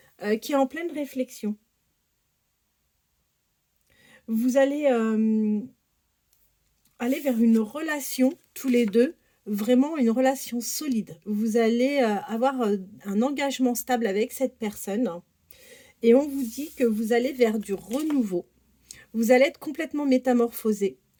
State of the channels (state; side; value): identical; both; correlation 1.00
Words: qui est en pleine réflexion. Vous allez aller vers une relation, tous les deux, vraiment une relation solide. Vous allez avoir un engagement stable avec cette personne et on vous dit que vous allez vers du renouveau. Vous allez être complètement métamorphosé.